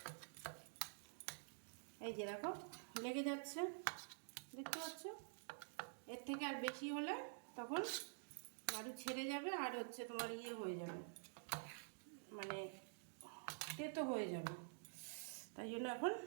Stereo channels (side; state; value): left; silent; digital silence